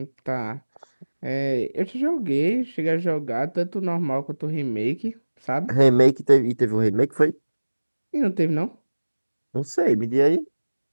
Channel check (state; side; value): inverted; both; correlation -1.00